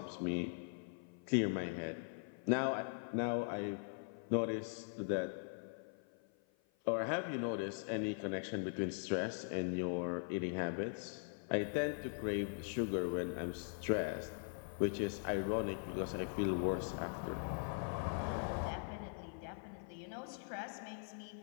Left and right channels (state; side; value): silent; right; 50 dB below the other